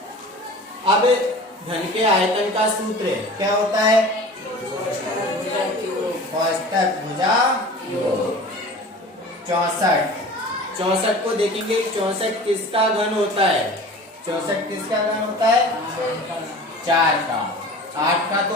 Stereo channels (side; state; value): both; normal; correlation 0.39